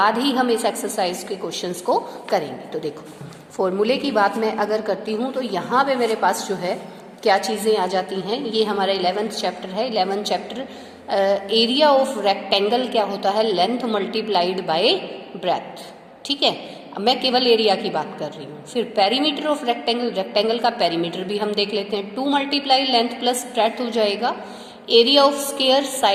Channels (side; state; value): both; identical; correlation 1.00